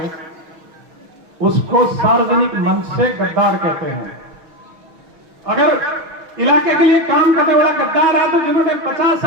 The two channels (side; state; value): left; late; 6.2 ms